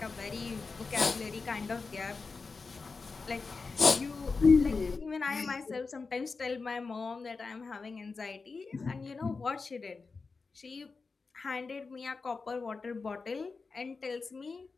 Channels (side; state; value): right; quieter; 4.4 dB